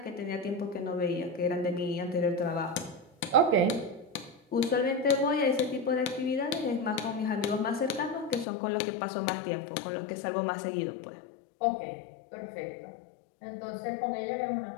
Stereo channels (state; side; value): drops out; right; at 8.5 s